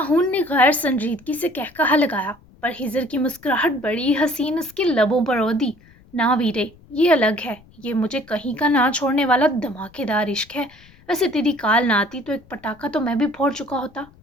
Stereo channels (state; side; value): noise; left; rumble, 27 dB below the sound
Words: ने गैर संजीदगी से कहकहा लगाया, पर हिजर की मुस्कुराहट बड़ी हसीन उसके लबों पर ओदी। ना वीरे, ये अलग है। ये मुझे कहीं का ना छोड़ने वाला धमाकेदार इश्क है। वैसे तेरी काल ना आती तो एक पटाखा तो मैं भी फोड़ चुका होता,